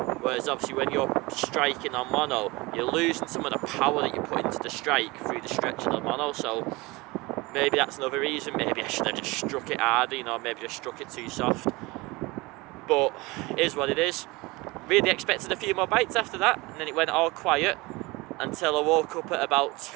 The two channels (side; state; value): left; quieter; 23.3 dB